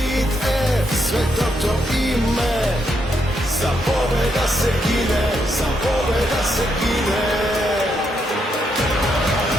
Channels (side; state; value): both; normal; correlation 0.79